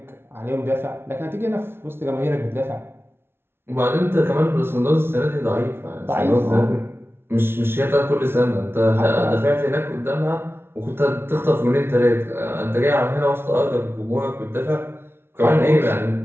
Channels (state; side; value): late; left; 0.12 ms